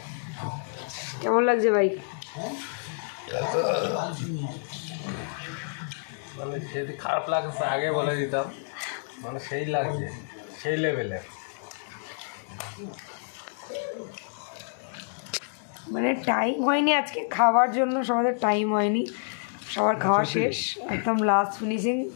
কেমন লাগছে ভাই? মানে যদি খারাপ লাগছে আগে বলে দিতাম, মানে সেই লাগছে, সেই লেভেলে। মানে টাইম হয়নি আজকে খাওয়ার জন্য, সবাদের টাইম হয়নি, সবার খাওয়া শেষ, একদম লাস্ট ফিনিশিং,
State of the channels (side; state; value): right; silent; digital silence